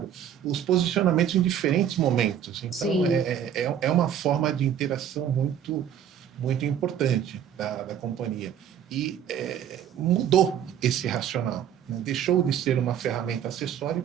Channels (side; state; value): left; quieter; 9.3 dB